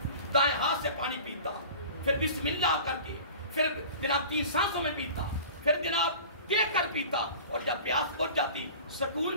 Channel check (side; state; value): both; inverted; correlation -0.40